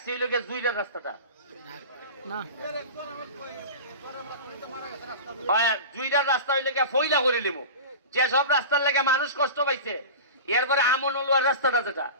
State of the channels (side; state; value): both; inverted; correlation -0.31